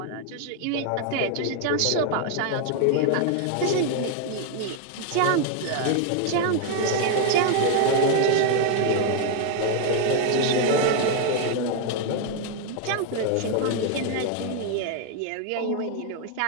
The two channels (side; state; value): both; different; correlation 0.01